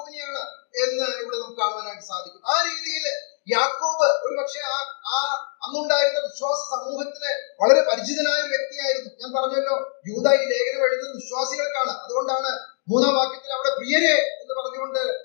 എന്ന് ഇവിടെ നമുക്ക് കാണുവാനായിട്ട് സാധിക്കും. ആ രീതിയിൽ യാക്കോബ് ഒരു പക്ഷേ ആ അന്നുണ്ടായിരുന്ന വിശ്വാസ സമൂഹത്തിന് വളരെ പരിചിതനായ ഒരു വ്യക്തിയായിരുന്നു. ഞാൻ പറഞ്ഞല്ലോ, യൂദാ ഈ ലേഖനം എഴുതുന്നത് വിശ്വാസികൾക്കാണ്. അതുകൊണ്ടാണ് 3-ാം വാക്യത്തിൽ അവിടെ പ്രിയരെ എന്ന് പറഞ്ഞുകൊണ്ട്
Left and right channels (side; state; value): right; silent; 63 dB below the other